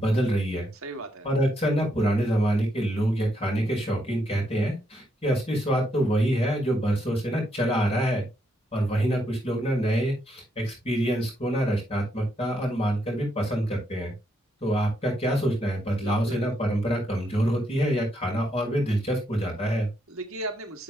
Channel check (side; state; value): both; normal; correlation 0.78